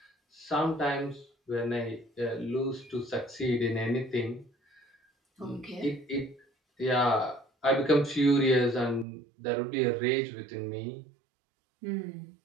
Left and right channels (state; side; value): drops out; left; at 9.1 s